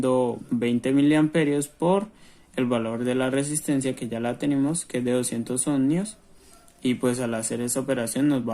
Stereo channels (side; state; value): both; identical; correlation 1.00